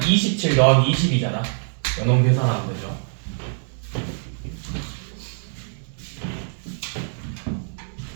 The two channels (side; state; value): left; silent; 63 dB below the other